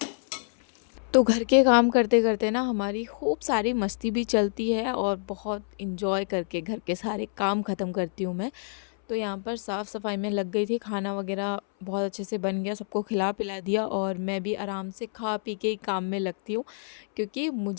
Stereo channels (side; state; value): right; silent; 60 dB below the other